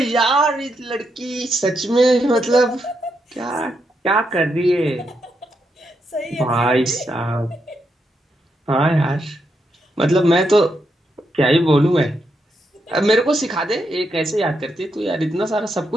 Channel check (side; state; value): both; normal; correlation 0.81